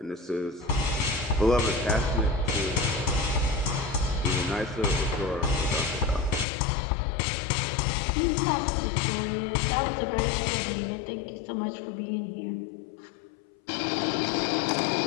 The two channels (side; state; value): right; drops out; at 6.5 s